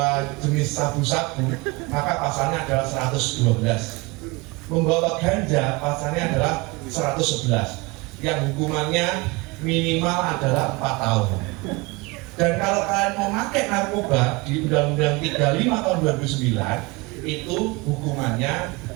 jenis sabu-sabu, maka pasalnya adalah 112. Membawa ganja pasalnya adalah 111. Yang hukumannya minimal adalah 4 tahun. Dan kalau kalian memakai narkoba di Undang-Undang 35 tahun 2009 itu hukumannya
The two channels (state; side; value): quieter; left; 25.0 dB